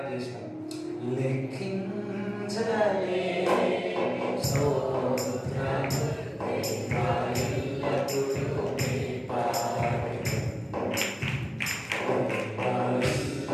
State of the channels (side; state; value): both; identical; correlation 1.00